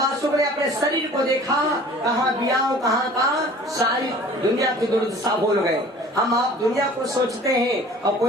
ने अपने शरीर को देखा, कहाँ बियाह कहाँ का, सारी दुनिया की दुर्दशा भूल गए। हम आप दुनिया को सोचते हैं और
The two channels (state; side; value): normal; both; correlation 0.47